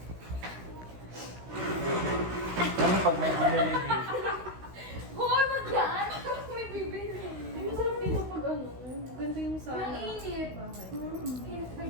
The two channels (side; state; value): left; late; 16 ms